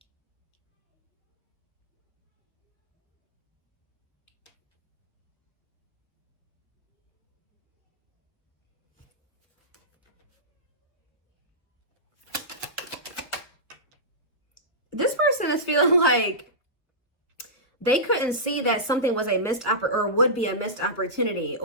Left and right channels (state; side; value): normal; both; correlation -0.17